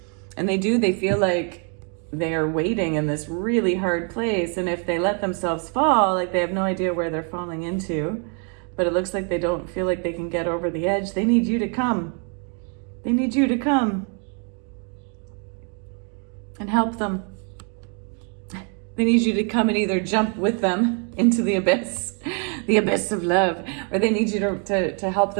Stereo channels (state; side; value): quieter; left; 39.7 dB